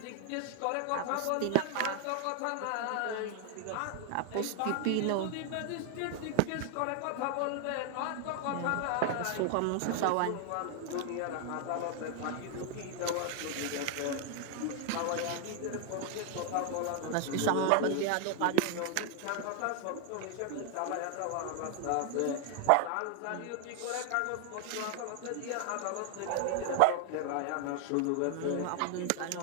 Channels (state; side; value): different; both; correlation 0.00